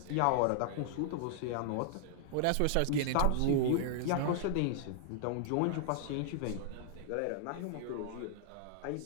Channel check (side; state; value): both; different; correlation -0.01